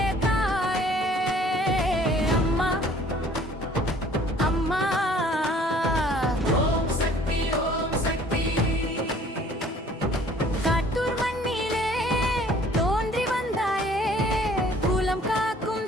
தாயே அம்மா அம்மா ஓம் சக்தி காட்டூர் மண்ணிலே தோன்றி வந்தாயே குலம் காக்கும்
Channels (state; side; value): normal; both; correlation 0.55